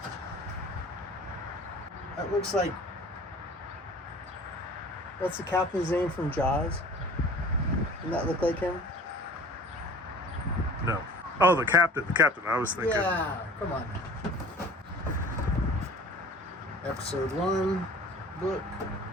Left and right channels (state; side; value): normal; both; correlation 0.45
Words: That looks like... What's the captain's name from Jaws? Doesn't that look like him? No. Oh, the captain. The captain. I was thinking. Yeah, come on. Episode 1 book.